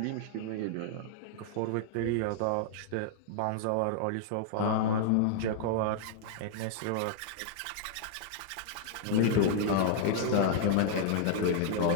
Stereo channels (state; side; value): different; both; correlation 0.00